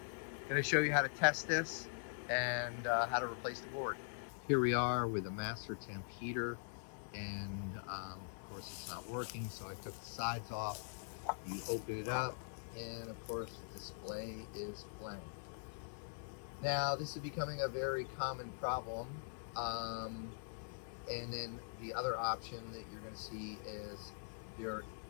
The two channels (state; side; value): silent; right; digital silence